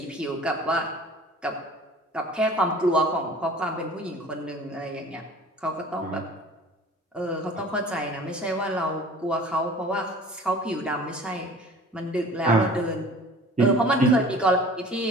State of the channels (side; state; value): both; normal; correlation 0.45